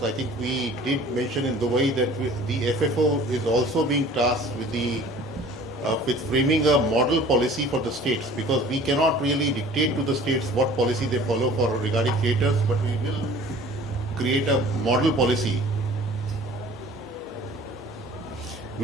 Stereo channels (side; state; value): both; normal; correlation 0.48